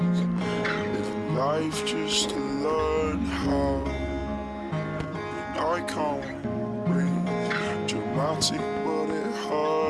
living life just to learn how. And I can't breathe, dramatic but it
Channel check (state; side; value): identical; both; correlation 1.00